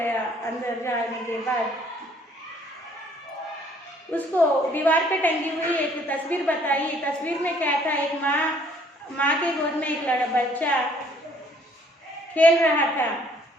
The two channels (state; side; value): normal; both; correlation 0.61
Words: अंदर जाने के बाद उसको दीवार पे टंगी हुई एक तस्वीर बताई। तस्वीर में क्या था? एक माँ के गोद में एक बच्चा खेल रहा था।